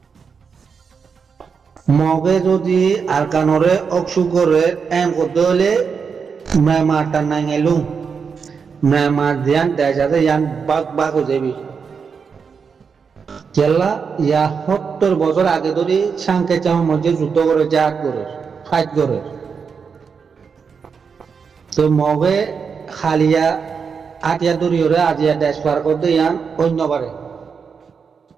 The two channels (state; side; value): quieter; left; 5.9 dB